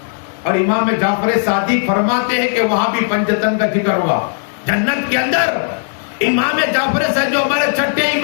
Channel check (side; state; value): right; silent; 63 dB below the other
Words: اور امام جعفر صادق فرماتے ہیں کہ وہاں بھی پنجتن کا ذکر ہوگا جنت کے اندر. امام جعفر صاحب جو ہمارے چھٹے